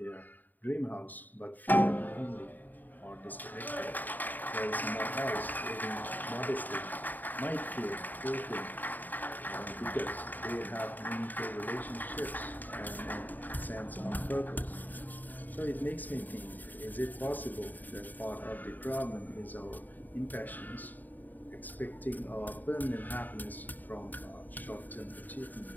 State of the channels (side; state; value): right; late; 0.086 ms